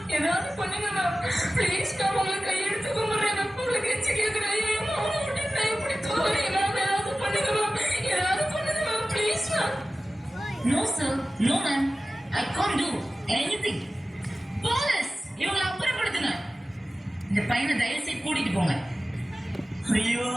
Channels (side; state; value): both; normal; correlation 0.96